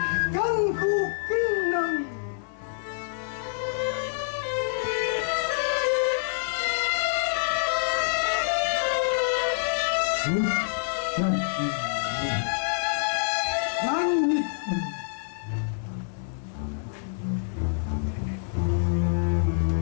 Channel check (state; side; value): silent; right; 56 dB below the other